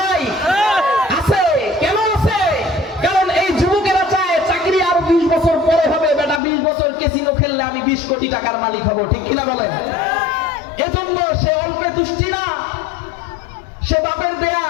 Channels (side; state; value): right; drops out; at 6.4 s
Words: নাই? আছে। কেন আছে? কারণ এই যুবকেরা চায় চাকরি আরো 20 বছর পরে হবে। বেটা 20 বছর ক্যাসিনো খেললে আমি 20 কোটি টাকার মালিক হব, ঠিক কিনা বলেন? এজন্য সে অল্পে তুষ্টি না, সে বাপের দেয়া